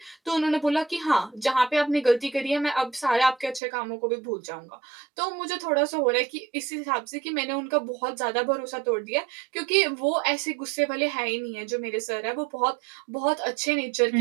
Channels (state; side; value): drops out; left; at 3.6 s